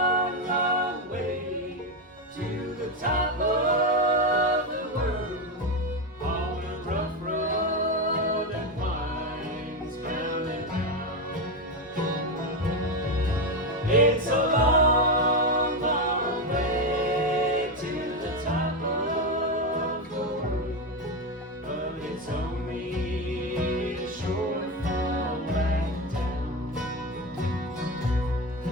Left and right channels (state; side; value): normal; both; correlation 0.13